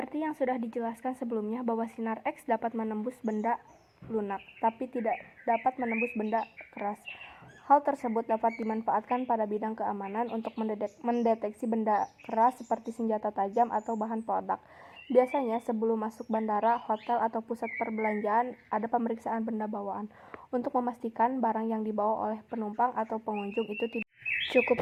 yang sudah dijelaskan sebelumnya bahwa sinar X dapat menembus benda lunak, tapi tidak dapat menembus benda keras. Hal tersebut dapat dimanfaatkan pada bidang keamanan untuk mendeteksi benda keras seperti senjata tajam atau bahan peledak. Biasanya sebelum masuk bandara, hotel, atau pusat perbelanjaan ada pemeriksaan benda bawaan untuk memastikan barang yang dibawa oleh penumpang atau pengunjung itu tidak.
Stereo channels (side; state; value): both; identical; correlation 1.00